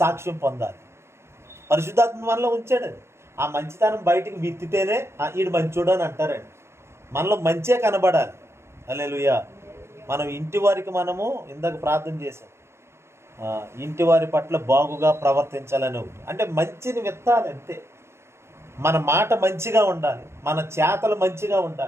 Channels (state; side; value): late; left; 0.13 ms